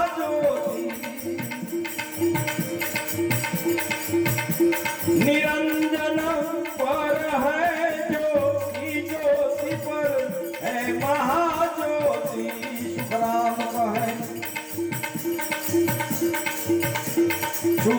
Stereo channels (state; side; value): identical; both; correlation 1.00